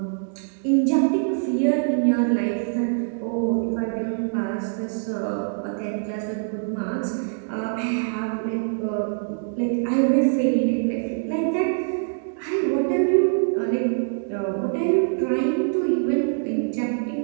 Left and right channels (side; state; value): left; silent; digital silence